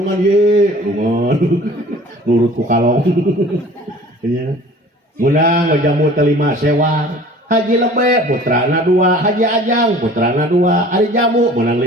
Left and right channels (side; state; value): both; normal; correlation 0.47